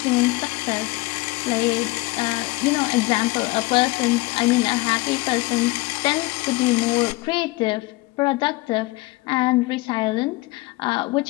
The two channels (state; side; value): quieter; right; 21.9 dB